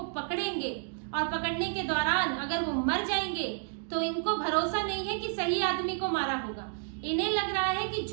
पकड़ेंगे और पकड़ने के दौरान अगर वो मर जाएंगे तो इनको भरोसा नहीं है कि सही आदमी को मारा होगा। इन्हें लग रहा है कि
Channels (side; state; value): left; silent; digital silence